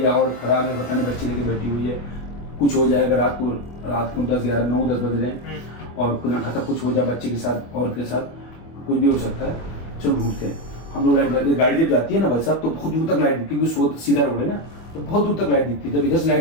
या और खराब है, पता नहीं, बच्ची लेके बैठी हुई है, कुछ हो जाएगा रात को 10, 11, 9, 10 बज रहे हैं, और खुदा खाता कुछ हो जाए बच्चे के साथ और के साथ, कुछ भी हो सकता है। चलो ढूंढते हैं हम लोग। लाइट गाड़ी जब जाती है ना भाई साहब, तो बहुत दूर तक लाइट दिखती है, क्योंकि सीधा रोड है ना, तो बहुत दूर तक लाइट दिखती है। जब इधर से लाइट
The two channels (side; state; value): right; late; 25 ms